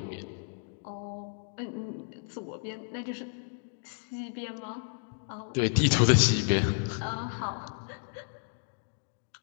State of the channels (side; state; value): right; silent; digital silence